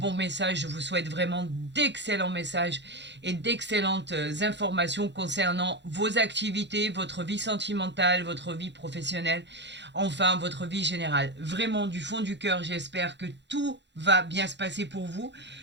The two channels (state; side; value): late; left; 0.52 ms